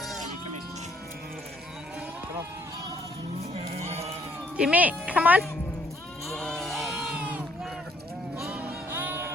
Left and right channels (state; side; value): normal; both; correlation 0.66